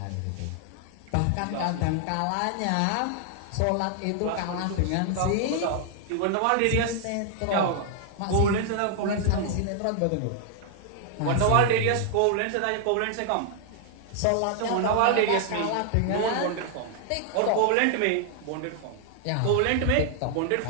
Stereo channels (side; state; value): both; different; correlation 0.00